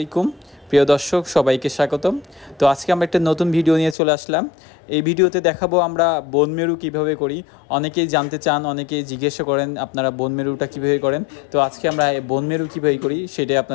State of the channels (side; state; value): right; drops out; at 4.0 s